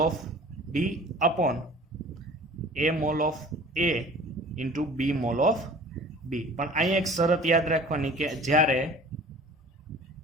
of D D upon A mole of A into B mole of B. પણ અહીંયા એક શરત યાદ રાખવાની કે જ્યારે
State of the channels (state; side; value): normal; both; correlation 0.45